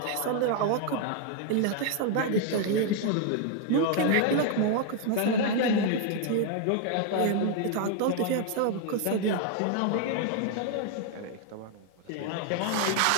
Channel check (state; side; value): different; both; correlation 0.00